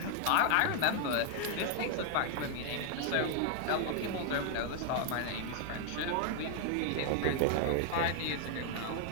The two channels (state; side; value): different; both; correlation 0.00